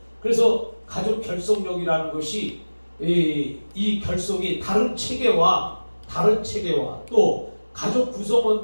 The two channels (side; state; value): both; inverted; correlation -1.00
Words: 그래서 가족 결속력이라는 것이 이 결속이 다른 체계와 또 가족